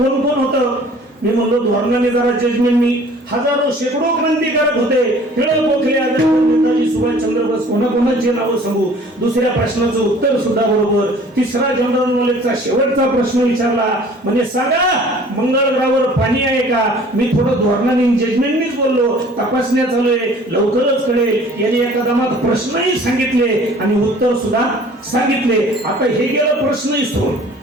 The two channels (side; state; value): both; normal; correlation 0.50